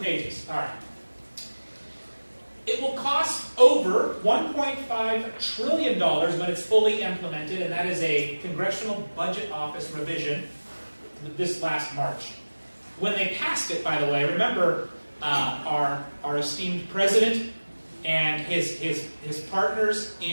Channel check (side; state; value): both; inverted; correlation -1.00